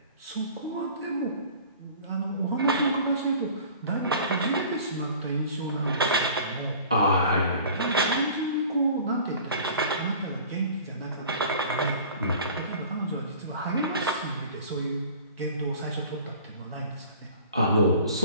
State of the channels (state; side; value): inverted; both; correlation -0.45